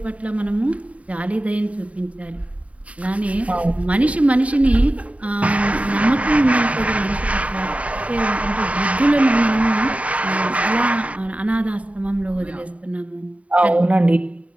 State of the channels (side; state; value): left; late; 0.066 ms